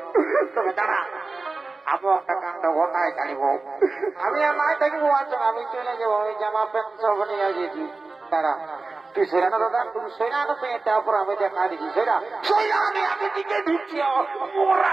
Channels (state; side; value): quieter; left; 3.6 dB